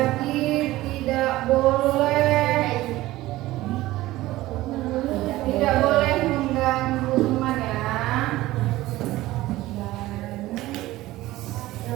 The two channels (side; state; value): left; quieter; 17.2 dB